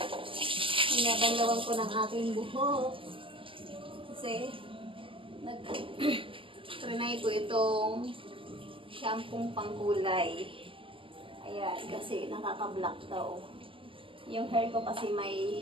Binabanlawan ko ng aking buhok. Kasi, trinay ko itong shampoo pangkulay. Ayan, kasi nakaka-black daw. Yung hair ko kasi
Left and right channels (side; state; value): left; late; 0.25 ms